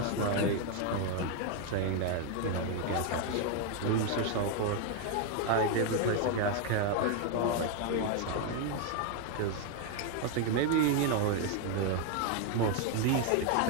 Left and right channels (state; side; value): different; both; correlation 0.01